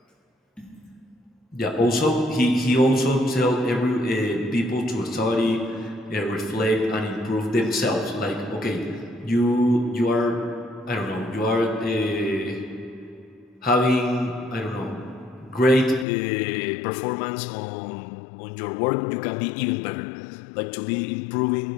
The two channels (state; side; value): drops out; right; at 16.1 s